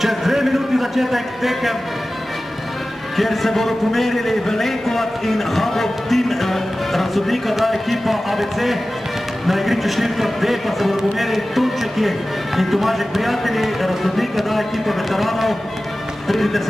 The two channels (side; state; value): both; normal; correlation 0.96